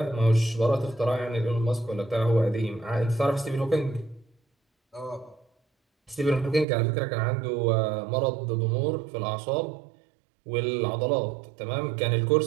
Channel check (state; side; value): drops out; left; at 6.7 s